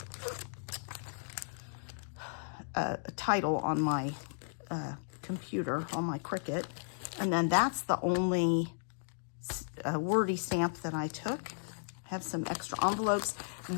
a title on my computer, on my Cricut. And then that's the only wordy stamp that I took. I have some extra envelopes.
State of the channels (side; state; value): right; silent; digital silence